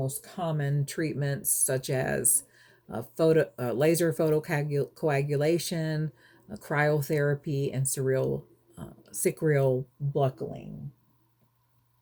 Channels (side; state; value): both; identical; correlation 1.00